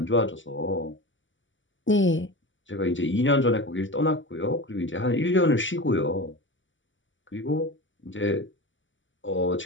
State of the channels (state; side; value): late; right; 0.55 ms